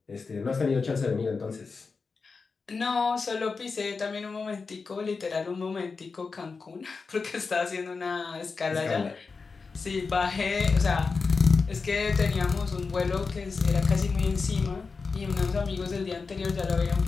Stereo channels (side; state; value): right; quieter; 4.6 dB